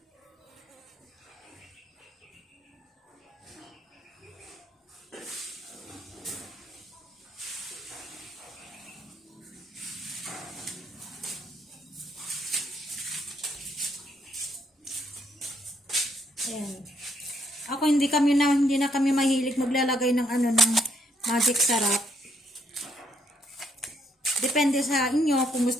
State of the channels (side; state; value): both; normal; correlation 0.72